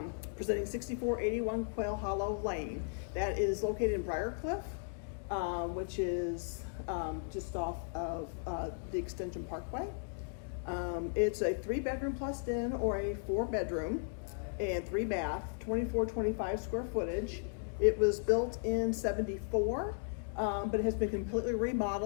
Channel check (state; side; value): silent; right; digital silence